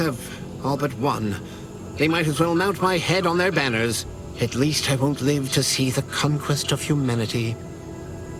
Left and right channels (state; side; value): identical; both; correlation 1.00